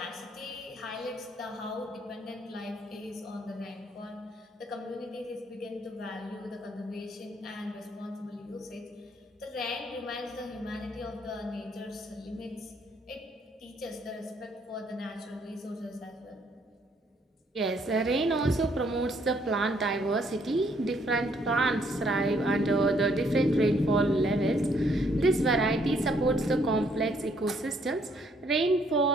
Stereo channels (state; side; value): normal; both; correlation 0.68